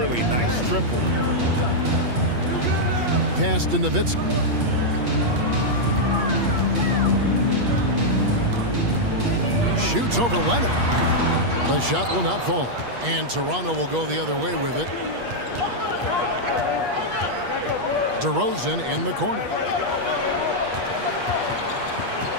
Nice triple. Pass to Nowitzki. Shoots over Leonard. The shot will not fall. And Toronto will go the other way with it. DeRozan in the corner.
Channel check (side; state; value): left; late; 8.4 ms